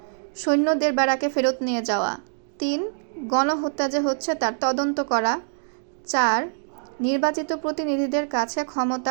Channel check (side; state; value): left; silent; digital silence